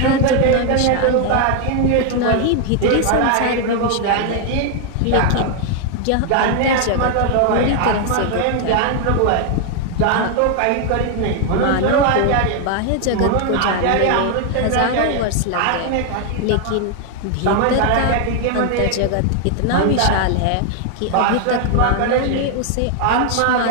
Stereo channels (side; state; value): both; different; correlation 0.00